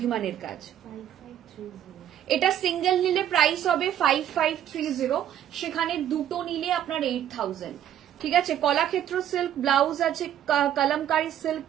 কাজ। এটা সিঙ্গেল নিলে প্রাইস হবে 5530, সেখানে দুটো নিলে আপনার 8000। ঠিক আছে। কলাক্ষেত্র সিল্ক ব্লাউজ আছে, কলমকারী সিল্ক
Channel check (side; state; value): left; quieter; 10.8 dB